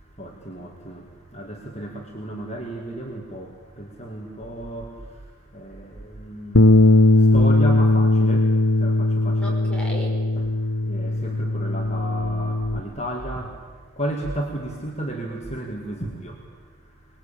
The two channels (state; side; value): normal; both; correlation 0.69